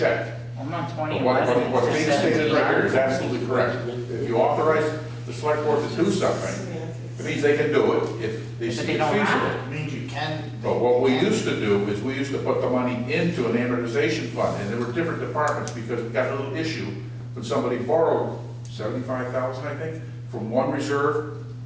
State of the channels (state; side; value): identical; both; correlation 1.00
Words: I'm on But 2011. what's being stated right here is 17. absolutely correct. If you authorize the select board to do something, it means they can do it if they But see they it don't have feasible. it. It means you can. But what we used to do is we used to put the money into an amortization fund, and there were different departments, because we got a little issue when somebody borrowed 75,000, I think, from one reserve